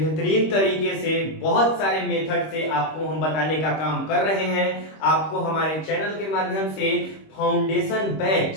तरीके से बहुत सारे मेथड से आपको हम बताने का काम कर रहे हैं। आपको हमारे चैनल के माध्यम से फाउंडेशन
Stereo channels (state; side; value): late; right; 26 ms